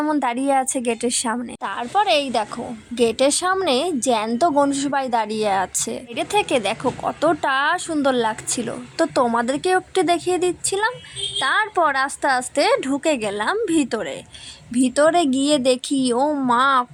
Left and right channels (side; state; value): both; identical; correlation 1.00